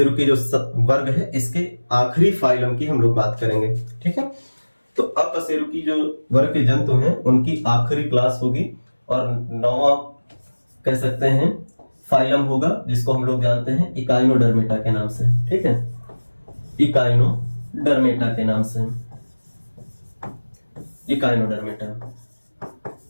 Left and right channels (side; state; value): both; inverted; correlation -1.00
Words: जो वर्ग है इसके आखिरी फाइलम की हम लोग बात करेंगे। ठीक है, तो अकशेरुकी जो वर्ग के जंतु हैं उनकी आखिरी क्लास होगी, और 9वां कह सकते हैं फाइलम होगा जिसको हम लोग जानते हैं इकाइनोडर्मेटा के नाम से। ठीक है, इकाइनोडर्मेटा के नाम से, इकाइनोडर्मेटा।